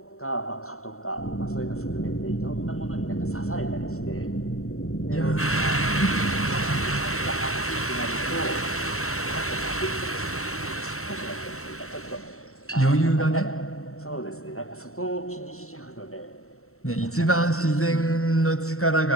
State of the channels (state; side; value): late; right; 0.63 ms